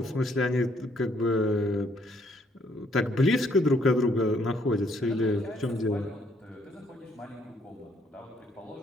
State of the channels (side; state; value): both; normal; correlation 0.68